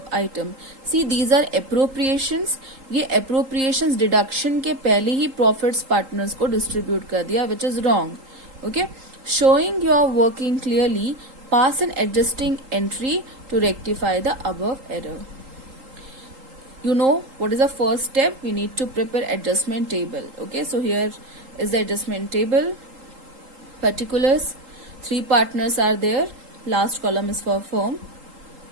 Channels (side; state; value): left; late; 3.8 ms